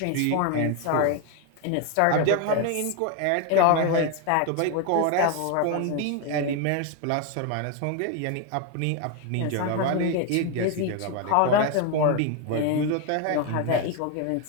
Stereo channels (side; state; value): both; different; correlation 0.01